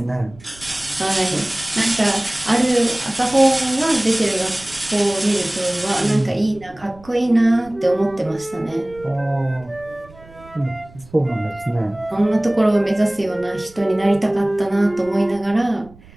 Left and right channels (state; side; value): noise; right; rumble, 23 dB below the sound